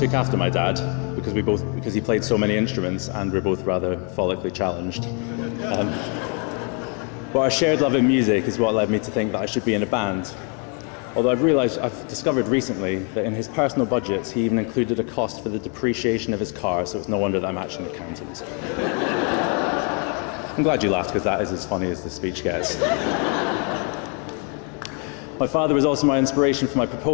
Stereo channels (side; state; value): right; quieter; 37.3 dB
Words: after my dad because he played so many instruments and we're both rather follically challenged. But our shared love of music is what led me to think that I should be in a band. Although I've discovered recently that in his personal budgets, he even included a cost for the depreciation of his car, so it's no wonder that I'm actually an accountant. I'm glad you laughed, because that is as funny as the speech gets. My father was also my inspiration for my